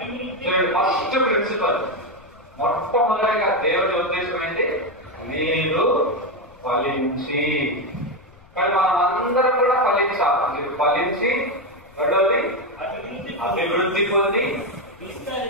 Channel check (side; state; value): left; noise; rumble, 26 dB below the sound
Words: ఫస్ట్ ప్రిన్సిపల్, మొట్టమొదటిగా దేవుడి ఉద్దేశం ఏంటి? మీరు ఫలించి. కానీ మనం అందరం కూడా ఫలించాలి. మీరు ఫలించి, రెండవది అభివృద్ధి పొంది,